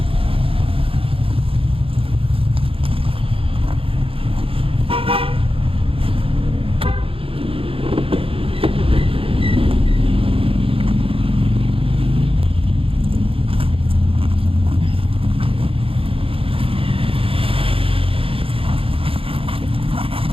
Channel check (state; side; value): late; left; 0.27 ms